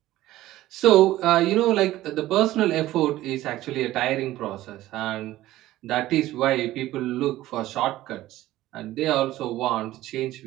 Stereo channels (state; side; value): quieter; left; 15.5 dB